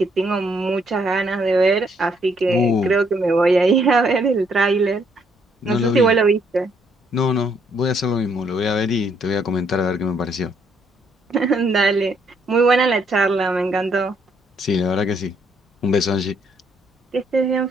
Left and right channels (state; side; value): normal; both; correlation 0.70